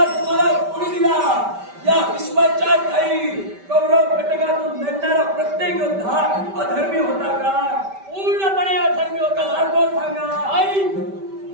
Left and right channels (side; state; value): left; late; 5.1 ms